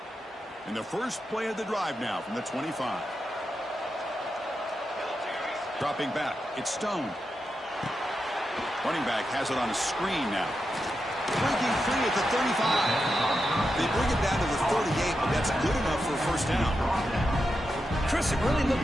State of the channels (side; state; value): both; normal; correlation 0.88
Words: And the first play of the drive now from the 25. Dropping back, it's Stone. Running back has it on a screen now. Breaking free at the 35. They bring it down to the 38, but that's good enough for a first down. Chris, it really